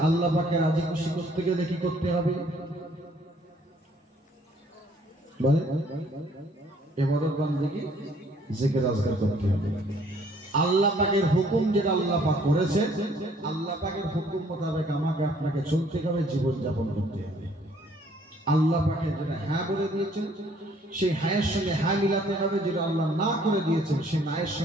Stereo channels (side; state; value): both; normal; correlation 0.61